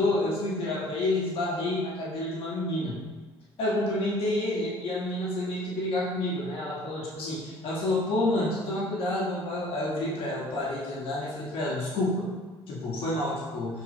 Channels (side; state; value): both; normal; correlation 0.50